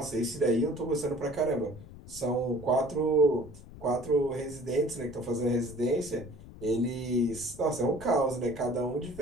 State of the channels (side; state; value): left; noise; rumble, 16 dB below the sound